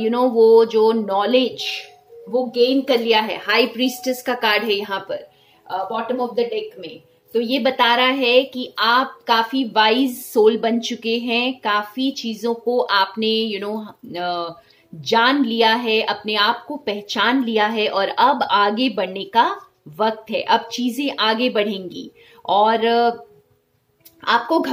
वो जो नॉलेज वो गेन कर लिया है। हाई प्रीस्टेस का कार्ड है यहाँ पर बॉटम ऑफ द डेक में। तो ये बता रहा है कि आप काफी वाइज सोल बन चुके हैं, काफी चीजों को आपने जान लिया है, अपने आप को पहचान लिया है और अब आगे बढ़ने का वक्त है। अब चीजें आगे बढ़ेंगी और आपको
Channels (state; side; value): identical; both; correlation 1.00